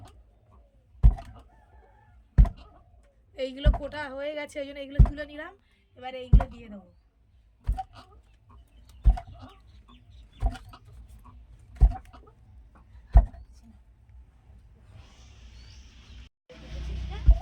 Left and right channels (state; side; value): identical; both; correlation 1.00